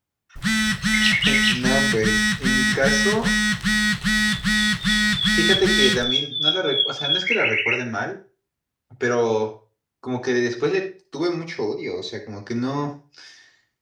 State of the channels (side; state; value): both; identical; correlation 1.00